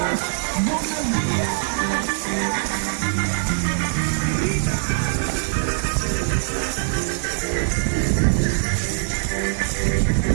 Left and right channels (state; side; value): silent; left; digital silence